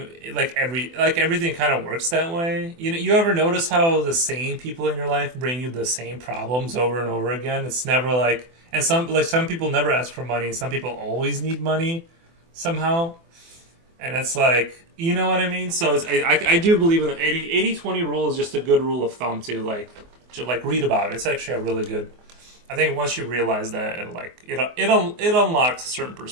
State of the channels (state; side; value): late; left; 24 ms